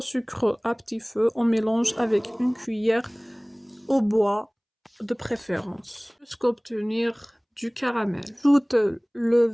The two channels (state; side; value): identical; both; correlation 1.00